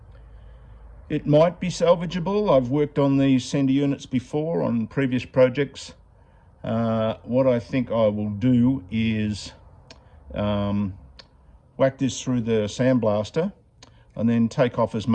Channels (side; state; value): both; identical; correlation 1.00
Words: It might be salvageable. I've worked on these sender units before on previous projects. What I think I will do is whack this through the sandblaster and then take off as